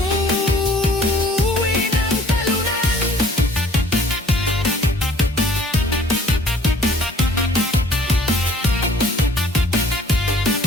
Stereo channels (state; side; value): normal; both; correlation 0.55